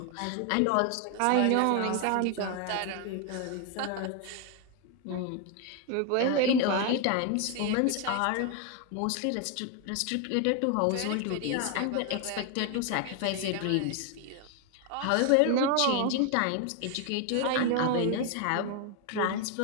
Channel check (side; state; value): both; different; correlation 0.01